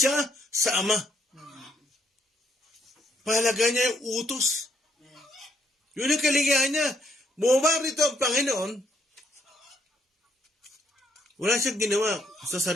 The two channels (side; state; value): both; normal; correlation 0.72